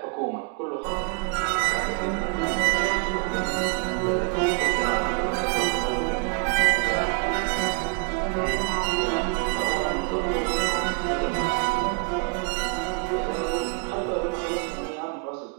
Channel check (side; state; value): left; quieter; 33.6 dB